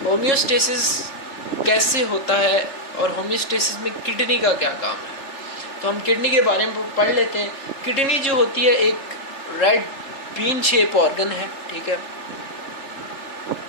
होम्योस्टेसिस कैसे होता है और होम्योस्टेसिस में किडनी का क्या काम है। तो हम किडनी के बारे में पढ़ लेते हैं। किडनी जो होती है एक रेड बीन शेप ऑर्गन है, ठीक है,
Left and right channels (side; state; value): right; late; 3.4 ms